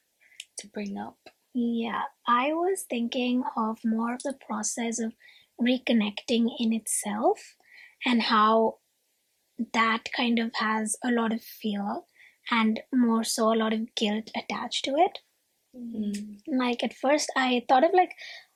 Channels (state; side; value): identical; both; correlation 1.00